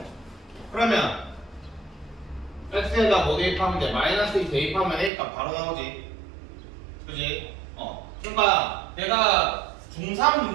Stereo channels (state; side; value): drops out; left; at 5.1 s